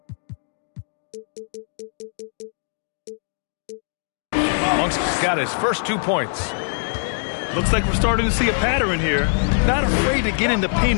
Monk's got his first 2 points. Looks like we're starting to see a pattern here. Not afraid to get in the paint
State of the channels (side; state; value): right; silent; 64 dB below the other